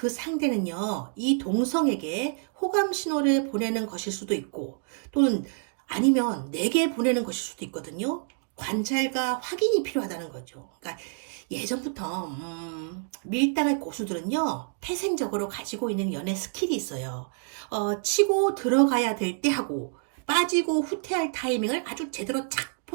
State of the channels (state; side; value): silent; left; 60 dB below the other